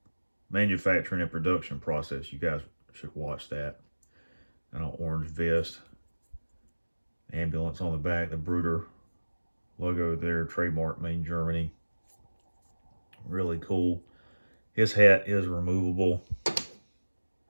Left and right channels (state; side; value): inverted; both; correlation -1.00